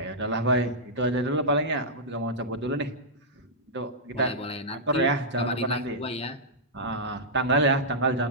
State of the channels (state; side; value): normal; both; correlation -0.10